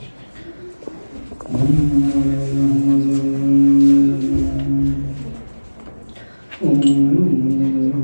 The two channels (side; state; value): both; inverted; correlation -1.00